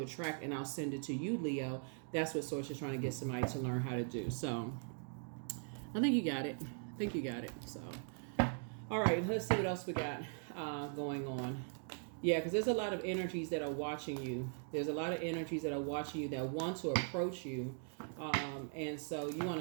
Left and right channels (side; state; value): left; silent; 51 dB below the other